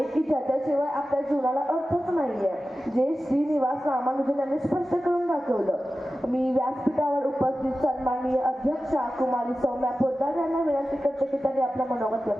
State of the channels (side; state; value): both; normal; correlation 0.94